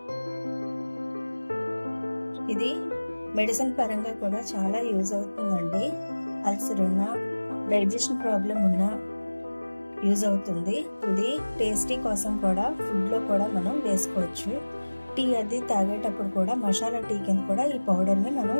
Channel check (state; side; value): inverted; both; correlation -1.00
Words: ఇది మెడిసిన్ పరంగా కూడా చాలా యూజ్ అవుతుందండి. అల్సర్ ఉన్నా, డైజెషన్ ప్రాబ్లం ఉన్నా యూజ్ అవుతుంది. ఇది టేస్టీ కోసం కూడా ఫుడ్లో కూడా మనం వేసుకోవచ్చు. టీ అది తాగేటప్పుడు కూడా మసాలా టీ కింద కూడా ఈ పౌడర్ని మనం